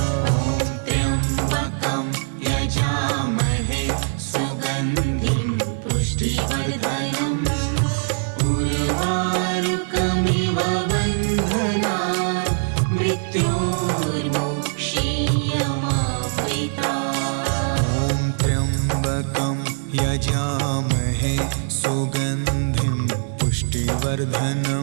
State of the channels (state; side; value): silent; left; 61 dB below the other